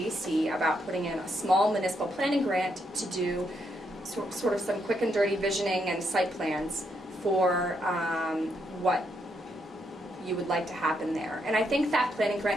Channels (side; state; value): both; normal; correlation 0.78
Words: about putting in a small municipal planning grant to do sort of some quick and dirty visioning and site plans for what you would like to happen there. And I think that planning